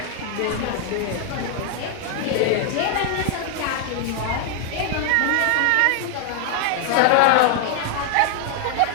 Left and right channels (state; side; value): different; both; correlation 0.00